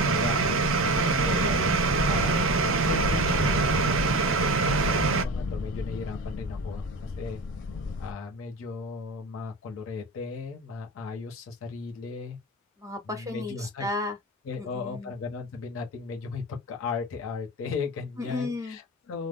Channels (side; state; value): both; normal; correlation 0.29